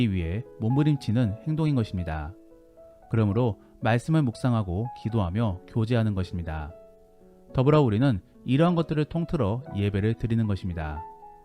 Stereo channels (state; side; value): identical; both; correlation 1.00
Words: 위해 몸부림치는 행동인 것입니다. 그러므로 말씀을 묵상하고 기도하며 교제하는 것입니다. 더불어 우리는 이러한 것들을 통틀어 예배를 드리는 것입니다.